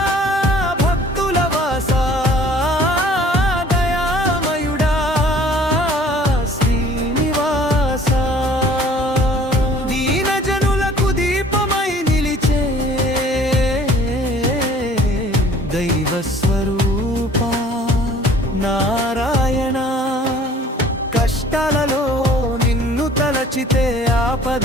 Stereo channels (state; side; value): normal; both; correlation 0.53